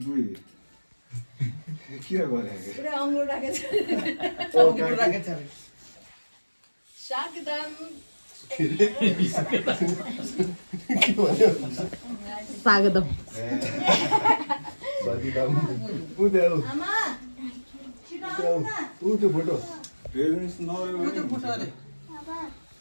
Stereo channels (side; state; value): both; inverted; correlation -1.00